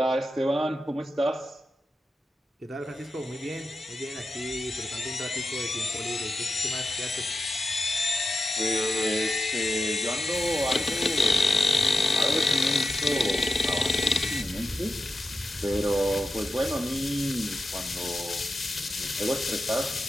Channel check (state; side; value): normal; both; correlation 0.90